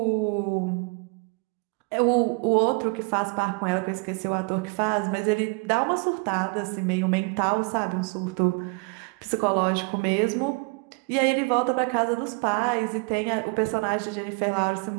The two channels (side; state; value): left; quieter; 30.8 dB